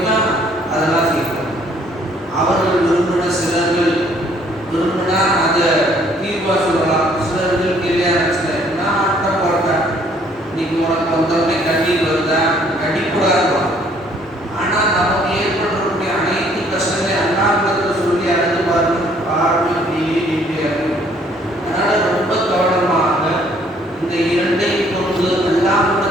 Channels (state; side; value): normal; both; correlation 0.62